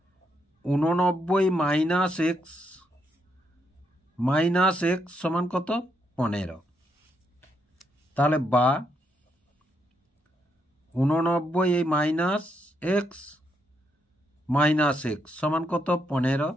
89 মাইনাস x সমান কত? 15। তাহলে বা 89 মাইনাস x সমান কত? 15।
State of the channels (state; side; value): normal; both; correlation 0.78